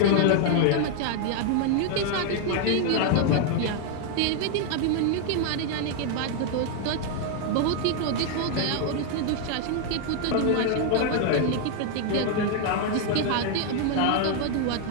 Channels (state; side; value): different; both; correlation 0.00